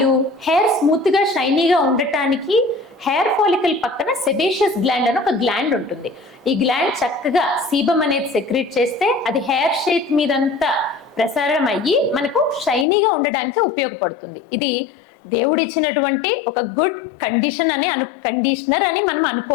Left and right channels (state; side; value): drops out; right; at 12.9 s